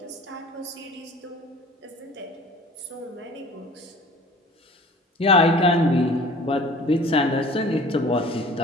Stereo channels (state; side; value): normal; both; correlation 0.46